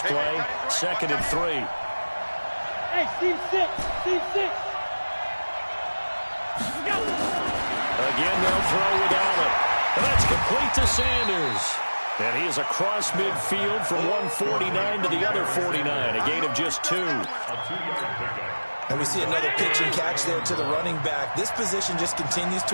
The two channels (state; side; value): inverted; both; correlation -1.00